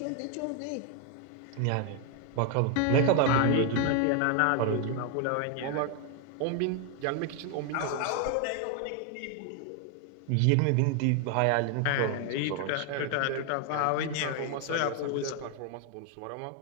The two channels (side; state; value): both; different; correlation 0.01